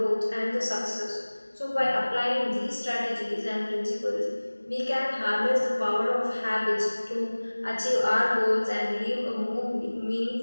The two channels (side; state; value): both; inverted; correlation -1.00